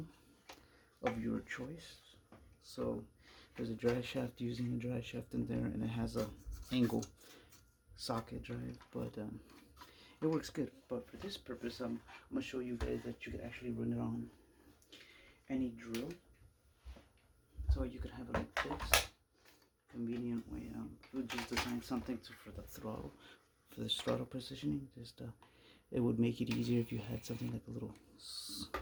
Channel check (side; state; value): both; identical; correlation 1.00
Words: of your choice. So there's a drive shaft using a drive shaft in there, and it has a angle socket drive, but it works good. But for this purpose, I'm gonna show you guys that you could actually run it on any drill. So you could have it like this, convenient way. We just designed something for the throttle, for the throttle positioning. Just it would make it easier if you had something like a little